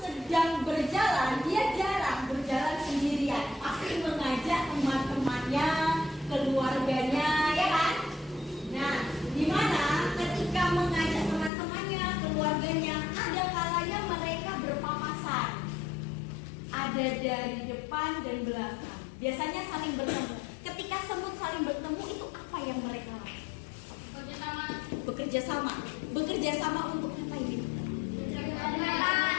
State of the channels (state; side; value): drops out; right; at 11.5 s